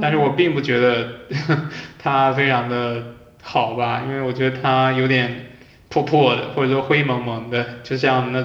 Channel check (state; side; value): identical; both; correlation 1.00